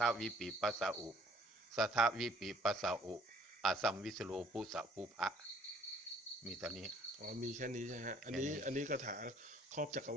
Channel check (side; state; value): both; normal; correlation 0.59